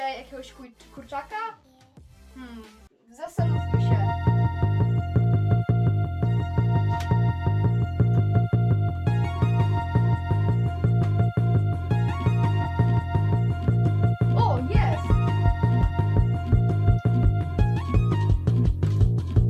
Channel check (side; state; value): both; identical; correlation 1.00